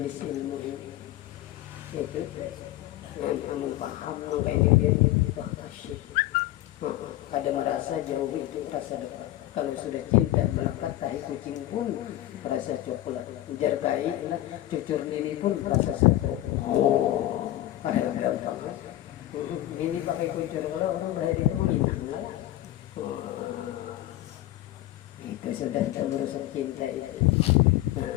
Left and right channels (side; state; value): right; quieter; 14.9 dB